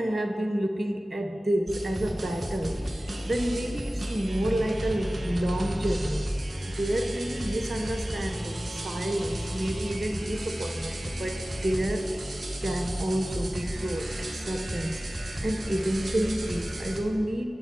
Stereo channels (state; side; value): normal; both; correlation 0.96